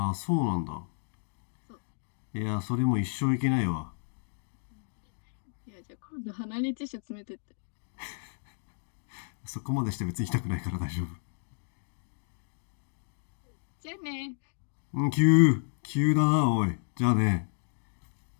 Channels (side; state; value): right; silent; digital silence